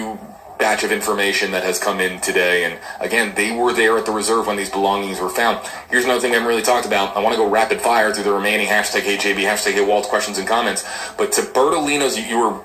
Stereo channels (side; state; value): both; identical; correlation 1.00